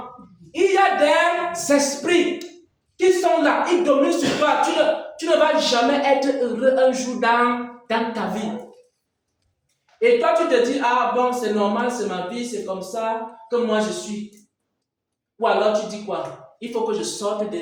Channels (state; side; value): identical; both; correlation 1.00